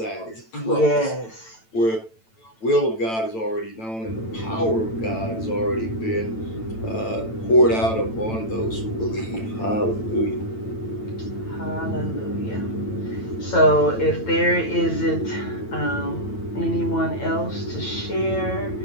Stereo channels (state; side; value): late; right; 9.0 ms